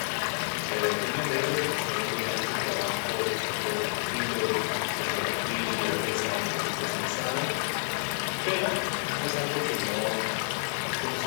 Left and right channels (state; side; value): silent; right; 58 dB below the other